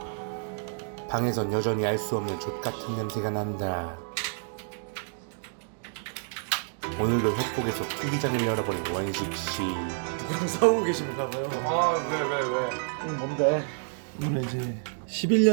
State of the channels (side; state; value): left; silent; digital silence